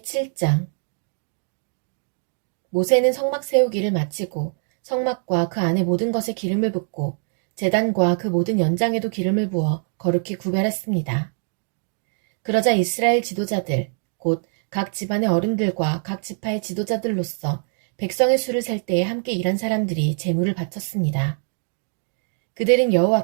7장. 모세는 성막 세우기를 마치고 성막과 그 안에 모든 것에 기름을 붓고 제단과 그 모든 연장에도 기름을 부어 거룩히 구별했습니다. 그러자 이스라엘 지도자들, 곧 각 집안의 어른들과 각 지파의 지도자들로서 백성의 수를 셀 때에 함께 일한 사람들이 제물을 바쳤습니다. 그들은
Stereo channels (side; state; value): left; silent; 61 dB below the other